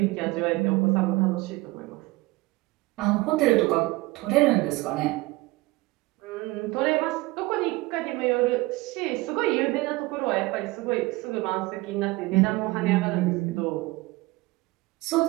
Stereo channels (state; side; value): quieter; left; 21.5 dB